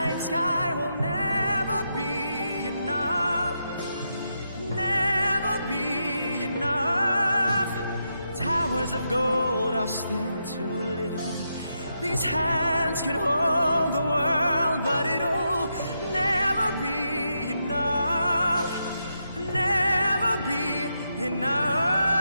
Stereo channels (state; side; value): inverted; both; correlation -0.83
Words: sky will never be enough, never be enough. Towers of gold are still too little. These hands could hold the world, but it'll never be enough, never be enough